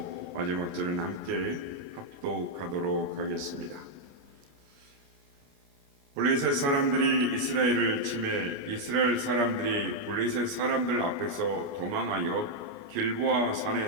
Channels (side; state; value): left; late; 29 ms